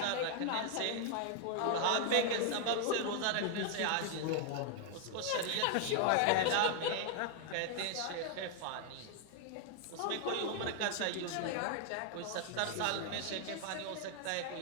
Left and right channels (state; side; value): different; both; correlation 0.00